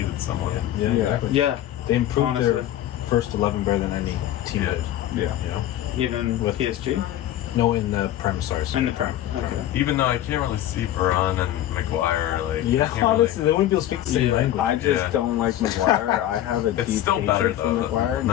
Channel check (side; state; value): right; quieter; 12.7 dB